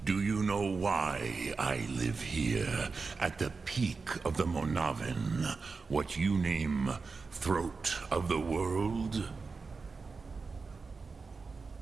Do you know why I live here, at the peak of the Monavin, what you name Throat of the World?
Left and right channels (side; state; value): left; quieter; 4.5 dB